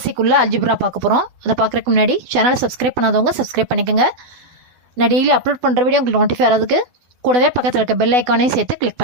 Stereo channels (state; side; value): late; left; 12 ms